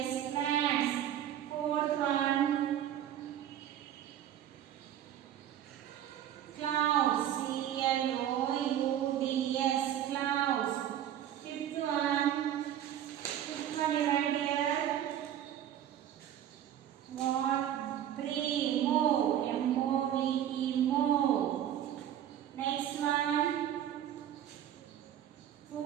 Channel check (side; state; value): left; quieter; 10.9 dB